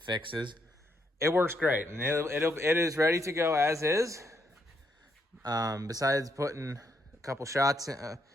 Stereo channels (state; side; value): normal; both; correlation 0.76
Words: It works great, and it is ready to go as is. Besides putting a couple shots